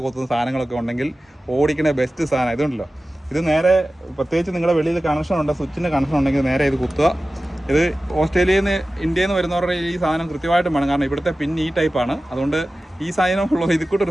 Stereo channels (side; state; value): both; normal; correlation 0.96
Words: കൊത്തുന്ന സാധനങ്ങളൊക്കെ ഉണ്ടെങ്കിൽ ഓടിക്കണ ബെസ്റ്റ് സാധനം ഇതുണ്ടല്ലോ. ഇത് നേരെ പ്രത്യേകിച്ച് നിങ്ങളുടെ വെളിയിൽ കണക്ഷൻ ഉണ്ട്, സ്വിച്ചിൻ്റെ കണക്ഷൻ ഉണ്ടെങ്കിൽ നേരെ ഇത് കുത്തുക. ഇത് ഓസ്ട്രേലിയയിൽ നിന്ന് ഇന്ത്യയിൽ നിന്ന് വരുന്നവരുടെ ഈ സാധനം കൃത്യമായിട്ടും വേണം, കാരണം ഇവിടുത്തെ പിൻ ഈ ടൈപ്പാണ്. അതുകൊണ്ട് ഈ സാധനമുള്ള ഇത്